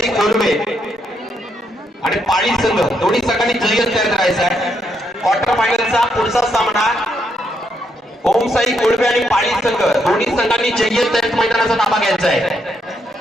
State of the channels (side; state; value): both; normal; correlation 0.77